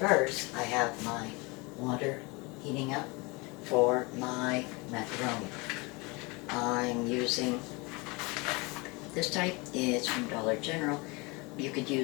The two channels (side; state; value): right; quieter; 26.9 dB